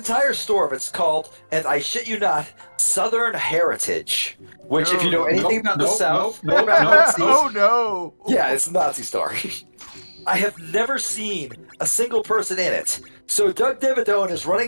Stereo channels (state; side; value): inverted; both; correlation -1.00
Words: store. It's called, and I shit you not, Southern Heritage. Which, if you know anything about the South, nope, Oh no! yeah, it's a Nazi store. I have never seen a single person in it. So Doug Dimmadome is